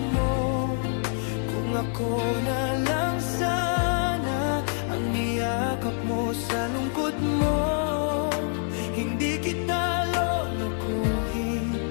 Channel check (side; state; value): right; silent; 58 dB below the other